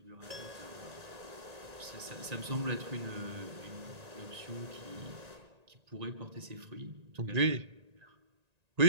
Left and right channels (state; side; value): late; left; 1.9 ms